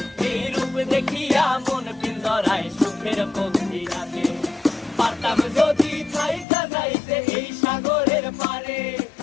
এই রূপ দেখিয়া মন পিঞ্জরায় সুখের পক্ষী রাখে। পারতাম যদি থাইকা যাইতে এই সাগরের পারে,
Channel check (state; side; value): drops out; right; at 6.5 s